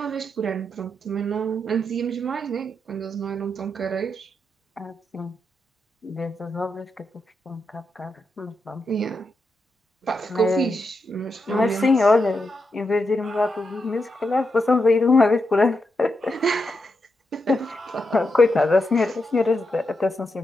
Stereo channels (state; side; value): normal; both; correlation 0.85